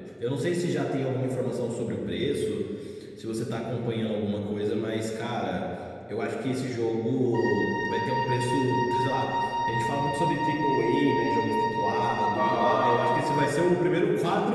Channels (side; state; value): both; identical; correlation 1.00